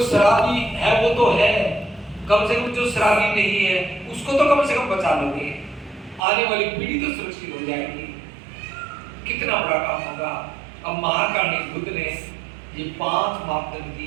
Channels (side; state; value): left; drops out; at 6.2 s